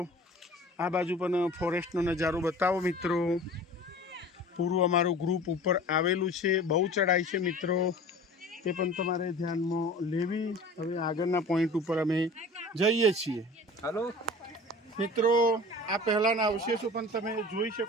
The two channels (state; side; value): normal; both; correlation 0.41